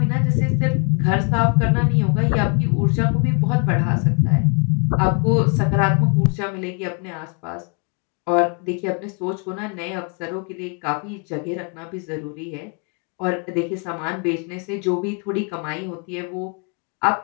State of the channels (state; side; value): quieter; right; 36.6 dB